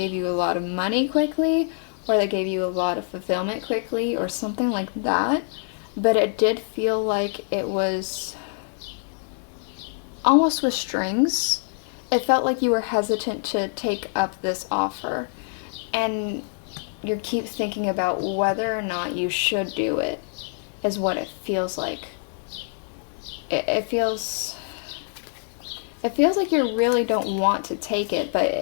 you a lot of money quickly, or that gave you a lot of fulfillment quickly, or something like that. But it did feel like it was almost with strings. It felt like you were hesitant to take up this offer, and you keep thinking about whether or not you should do it, is what it feels like. It feels like you really don't want to take it,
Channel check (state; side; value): silent; right; digital silence